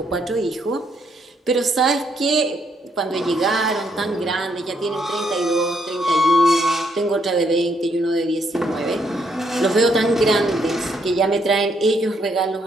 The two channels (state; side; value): normal; both; correlation 0.73